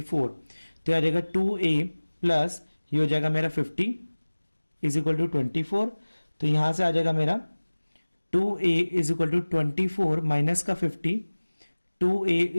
तो आ जाएगा 2a प्लस ये हो जाएगा मेरा 50 इज इक्वल टू 24, तो यहां से आ जाएगा मेरा 2a is equal to 24 minus का 50, 2a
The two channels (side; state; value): both; inverted; correlation -1.00